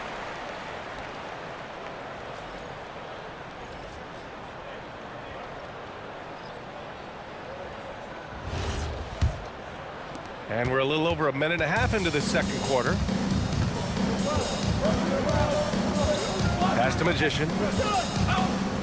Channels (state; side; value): identical; both; correlation 1.00